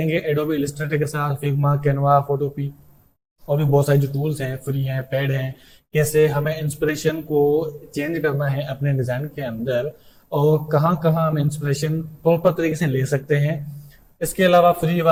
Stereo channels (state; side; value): identical; both; correlation 1.00